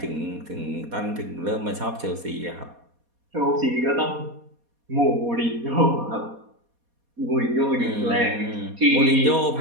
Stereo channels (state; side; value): late; left; 4.2 ms